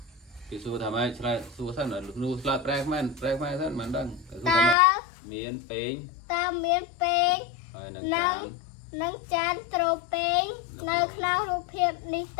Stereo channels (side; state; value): right; drops out; at 4.8 s